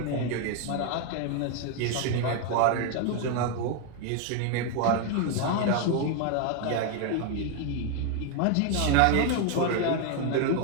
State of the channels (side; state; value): both; different; correlation 0.01